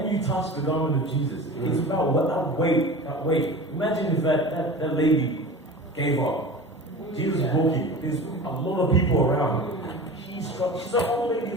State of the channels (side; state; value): both; normal; correlation 0.35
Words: you touch the garment of Jesus, it's about that weight. Imagine if that lady gave up. Jesus is walking. There's a lot of people around. She's an old lady